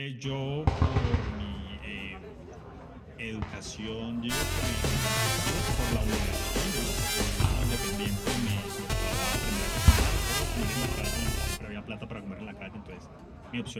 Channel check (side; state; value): both; identical; correlation 1.00